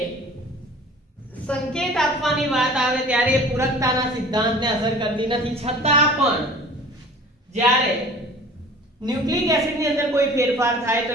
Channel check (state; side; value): normal; both; correlation 0.44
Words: સંકેત આપવાની વાત આવે ત્યારે એ પૂરકતાના સિદ્ધાંતને અસર કરતી નથી. છતાં પણ જ્યારે ન્યુક્લિક એસિડની અંદર કોઈ ફેરફાર થાય તો